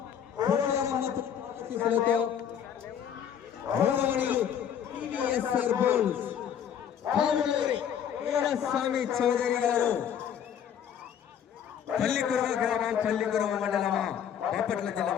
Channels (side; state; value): right; quieter; 8.8 dB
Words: స్వామి చౌదరి గారు పల్లికురవ గ్రామం పల్లికురవ మండలమా బాపట్ల జిల్లా